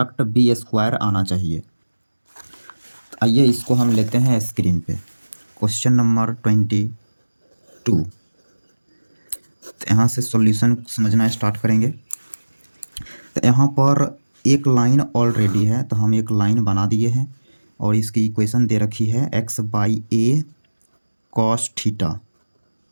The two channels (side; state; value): both; inverted; correlation -1.00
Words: बी स्क्वायर आना चाहिए। आइए इसको हम लेते हैं स्क्रीन पे। Question number 22। तो यहाँ से सॉल्यूशन समझना स्टार्ट करेंगे। तो यहाँ पर एक लाइन ऑलरेडी है, तो हम एक लाइन बना दिए हैं और इसकी इक्वेशन दे रखी है x by a cos theta